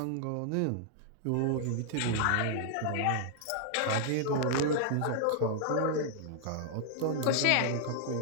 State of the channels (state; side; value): different; both; correlation -0.01